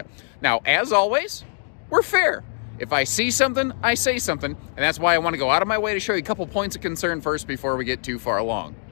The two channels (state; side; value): silent; right; digital silence